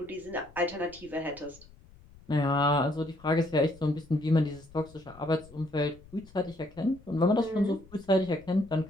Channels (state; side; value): noise; left; rumble, 23 dB below the sound